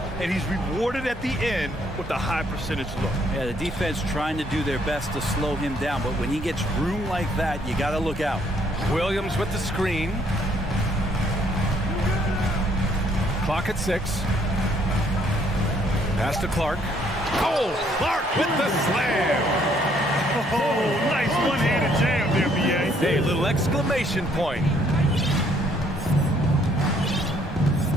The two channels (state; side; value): normal; both; correlation 0.66